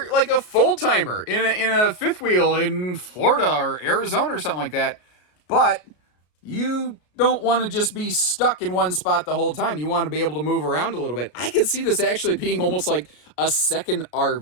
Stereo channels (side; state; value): right; late; 33 ms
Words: like a full-timer in a fifth wheel in Florida or Arizona or something like that, but you don't want to just be stuck in one spot the whole time. You want to be able to move around a little bit. I could see this actually being almost like a second